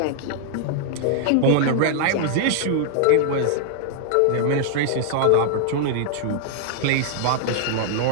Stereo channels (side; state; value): both; different; correlation -0.01